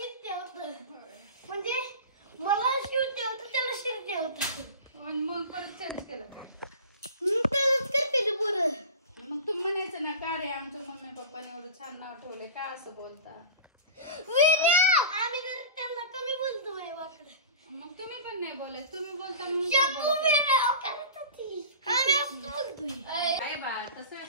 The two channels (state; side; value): inverted; both; correlation -0.35